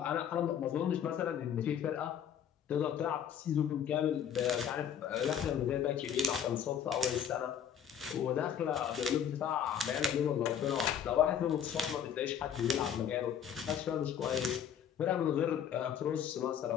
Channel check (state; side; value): quieter; right; 8.6 dB